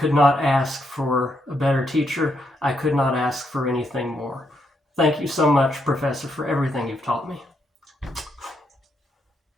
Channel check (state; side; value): normal; both; correlation 0.78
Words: not ask for a better teacher. I could not ask for anything more. Thank you so much, Professor, for everything you've taught me.